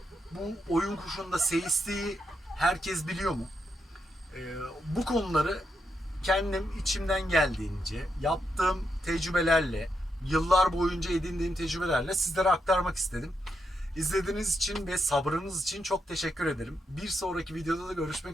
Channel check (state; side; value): normal; both; correlation 0.82